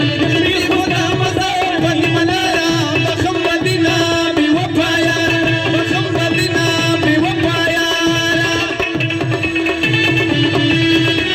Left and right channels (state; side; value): identical; both; correlation 1.00